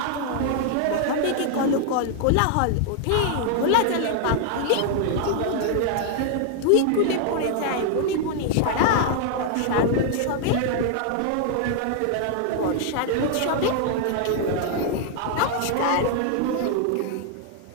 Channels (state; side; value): different; both; correlation 0.00